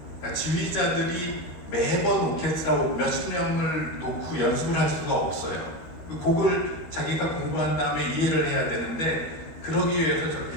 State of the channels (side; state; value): right; late; 13 ms